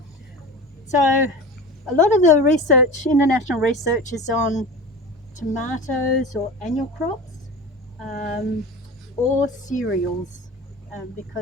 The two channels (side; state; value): both; normal; correlation 0.32